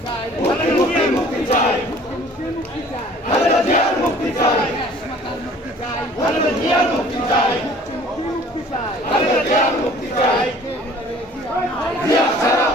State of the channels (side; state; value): both; normal; correlation 0.51